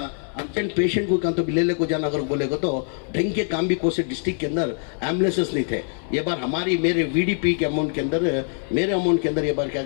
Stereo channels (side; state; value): right; silent; 59 dB below the other